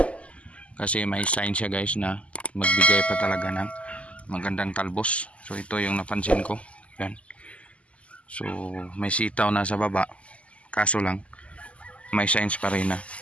kasi may sign siya guys na magbigay pa talaga ng magandang talbos. So ito yung napansin ko, yan. So may sitaw na sa baba, kaso lang may signs pa rin na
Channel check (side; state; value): right; late; 0.062 ms